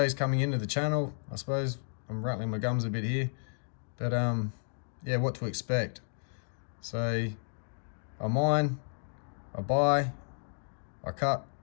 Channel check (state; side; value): silent; right; digital silence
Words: coming into the channel, I suppose I'm rattling my gums a bit here, but yeah, what to expect. So I mine, I buy, I cut,